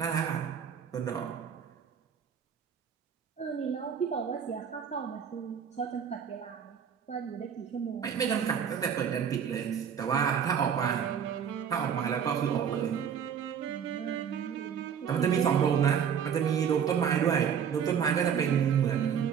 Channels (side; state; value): left; quieter; 7.8 dB